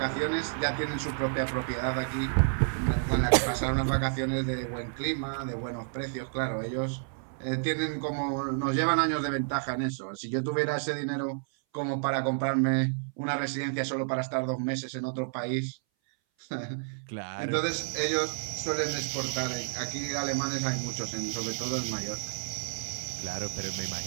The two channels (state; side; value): silent; left; 58 dB below the other